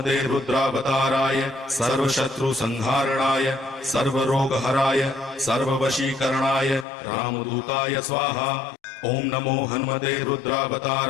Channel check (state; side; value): drops out; right; at 6.9 s